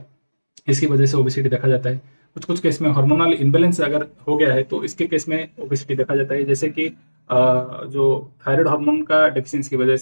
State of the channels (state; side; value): inverted; both; correlation -1.00